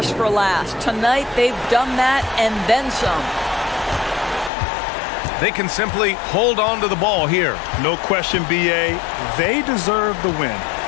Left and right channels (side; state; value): right; drops out; at 4.5 s